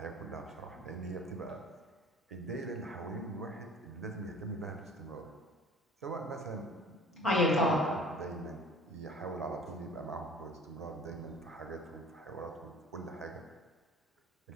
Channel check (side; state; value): both; normal; correlation 0.46